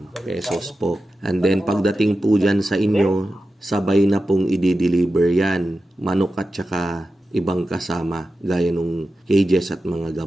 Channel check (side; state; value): both; normal; correlation 0.92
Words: pesos po. And then, pagdating po dyan sa inyo, sabay na pong i-deliver yan. Manok at saka ibang kasama, gaya nung cages at mga